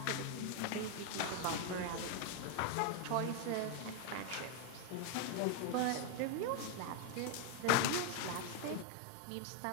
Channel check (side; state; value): both; different; correlation 0.00